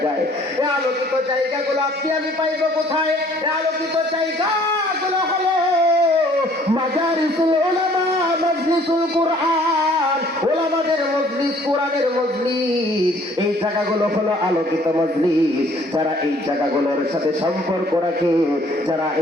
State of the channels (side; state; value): both; normal; correlation 0.58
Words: যায়। এই আলোকিত জায়গাগুলো আপনি আমি পাইব কোথায়? এই আলোকিত জায়গাগুলো হলো মাজারিসুল উলামা, মাজলিসুল কুরআন, উলামাদের মজলিস, কোরআনের মজলিস। এই জায়গাগুলো হলো আলোকিত মজলিস। যারা এই জায়গাগুলোর সাথে সম্পর্ক রাখে, যারা